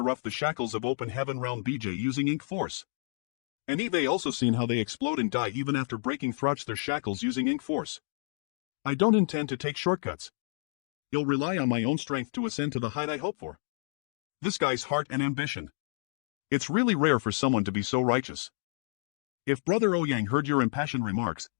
shackles of open heaven realm BJ using Ink Force. And Eve also seen how they explode and die even after breaking through their shackles using Ink Force. I don't intend to take shortcuts. I'll rely on my own strength to ascend to the height I hope for. This guy's heart and ambition. It's really rare for someone to be so righteous. If Brother Ouyang heard your impassioned remarks,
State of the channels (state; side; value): silent; right; digital silence